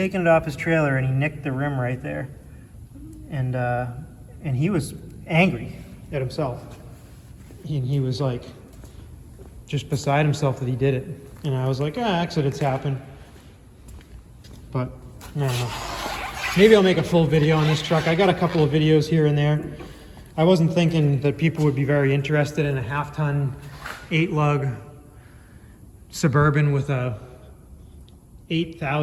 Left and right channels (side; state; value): both; identical; correlation 1.00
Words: it off his trailer, and he nicked the rim right there, and he was angry at himself. He was like just beside himself that he did it, and I was like, accidents happen. But I don't know. Maybe I'll make a full video on this truck. I got a couple of videos here and there. I wasn't thinking that people would be very interested in a half-ton 8-lug Suburban with a